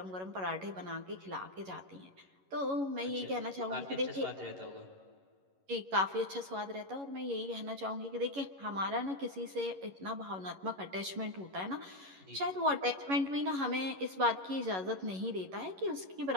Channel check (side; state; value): left; late; 11 ms